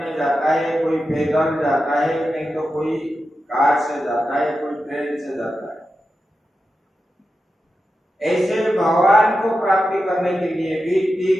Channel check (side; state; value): both; normal; correlation 0.91